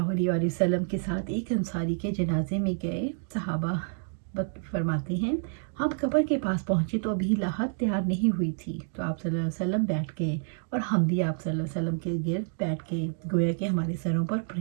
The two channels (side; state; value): left; silent; digital silence